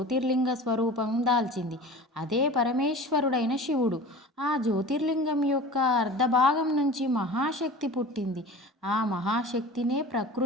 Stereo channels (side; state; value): both; normal; correlation 0.38